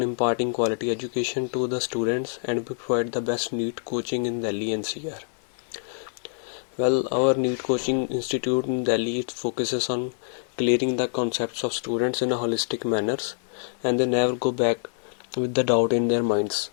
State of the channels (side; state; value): right; silent; 61 dB below the other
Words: imparting quality education to the students and we provide the best NEET coaching in Delhi NCR. Well, our NEET coaching institute in Delhi focuses on clearing the concepts of students in a holistic manner and they never go back with the doubt in their minds.